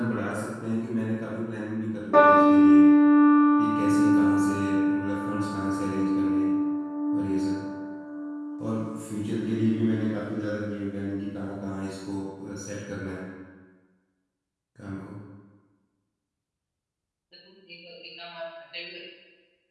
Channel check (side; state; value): both; identical; correlation 1.00